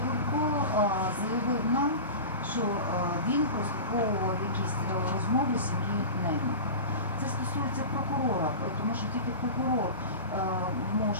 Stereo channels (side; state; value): both; inverted; correlation -0.30